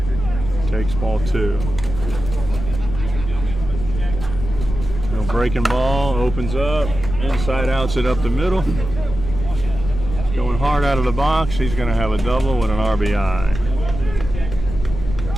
Takes ball 2. No breaking ball, opens up, inside outs it up the middle. He's going hard out of the box. He's going to have a double with an RBI.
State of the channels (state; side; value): noise; left; rumble, 7 dB below the sound